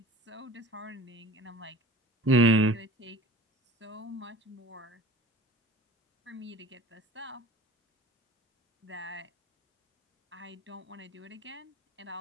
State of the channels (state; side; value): normal; both; correlation 0.43